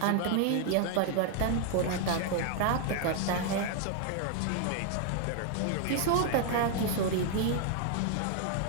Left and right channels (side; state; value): both; different; correlation 0.00